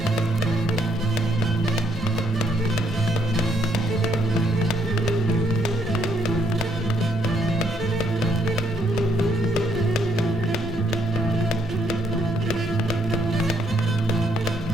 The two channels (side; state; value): both; normal; correlation 0.71